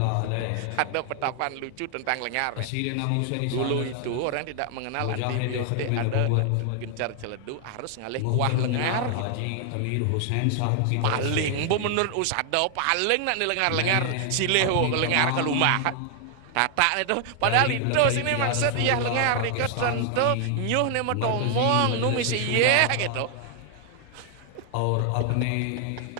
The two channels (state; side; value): different; both; correlation 0.00